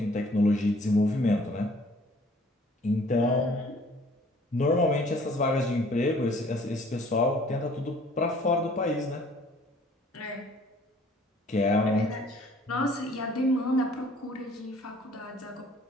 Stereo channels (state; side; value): normal; both; correlation 0.55